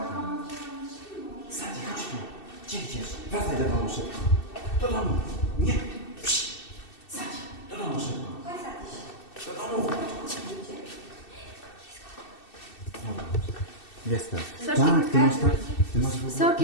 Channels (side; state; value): right; late; 2.7 ms